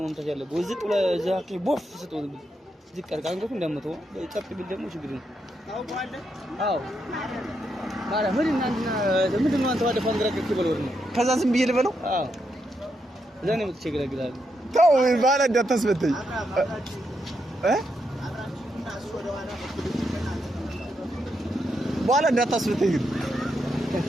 መምታት ያለበት ወዝጥ ለዛክ ቦፍ ስትወል ዝቀር ካንገቱ እንደመተው ጸጥ ቢል ደግሞ ችግር ነው ታውቃለህ አዎ ማርያም ምንድን ነው አንተ ወደ ፈንድራ ከኪበለው ነው ከዛ ዝም ብዬ ልበለው አዎ እዛ ነው የምትቸገረግላል ተው ባላ እንዳታስበተኝ ባላ እንዳታስበተኝ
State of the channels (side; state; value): both; normal; correlation 0.81